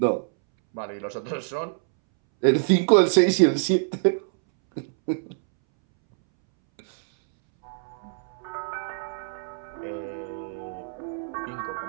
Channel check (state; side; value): silent; left; 61 dB below the other